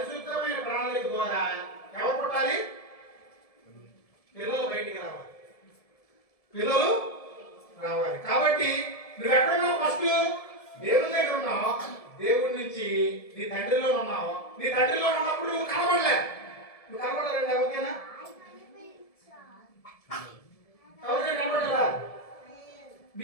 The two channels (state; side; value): late; right; 1.7 ms